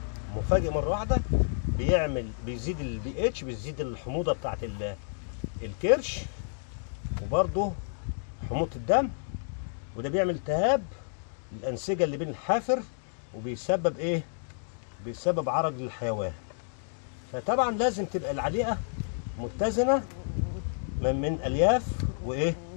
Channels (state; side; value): silent; right; digital silence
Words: مفاجئ مره واحده بيزيد البي اتش، بيزيد الحموضه بتاعت الكرش، وبرضه حموضه الدم، وده بيعمل التهاب الانسجه اللي بين الحافر، وبيسبب ايه بيسبب عرج للحيوان. فطبعا لازم تبقى العليقه متزنه من الياف وايه